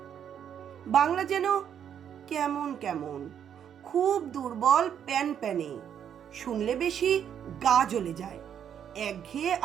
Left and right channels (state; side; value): quieter; left; 8.9 dB